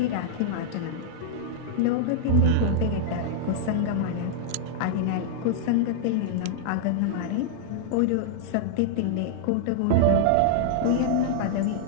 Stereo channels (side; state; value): both; different; correlation -0.01